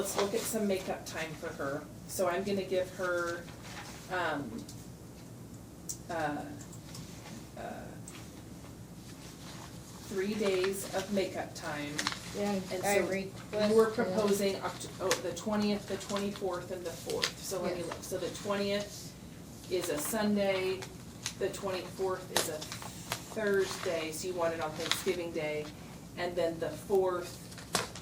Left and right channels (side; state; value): both; identical; correlation 1.00